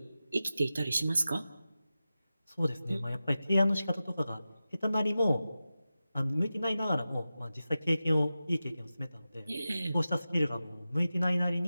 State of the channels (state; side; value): inverted; both; correlation -0.94